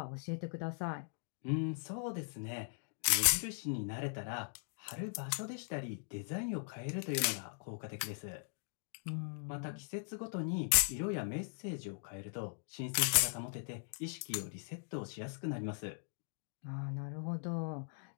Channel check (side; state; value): right; silent; digital silence